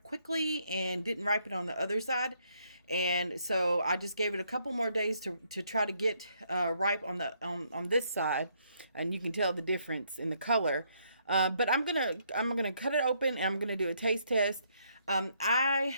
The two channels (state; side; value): inverted; both; correlation -0.72